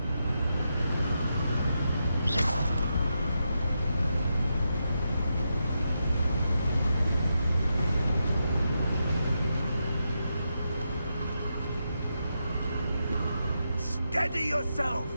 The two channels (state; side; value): inverted; both; correlation -0.85